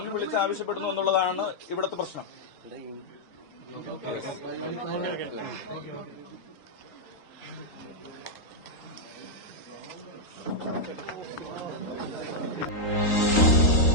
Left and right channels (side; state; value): right; late; 3.8 ms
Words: വിളിച്ച് ആവശ്യപ്പെടുന്നു എന്നുള്ളതാണ് ഇവിടുത്തെ പ്രശ്നം.